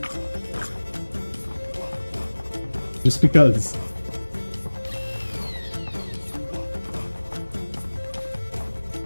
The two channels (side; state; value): both; inverted; correlation -1.00